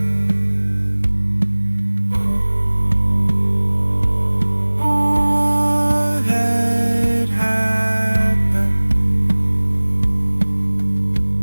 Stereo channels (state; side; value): inverted; both; correlation -1.00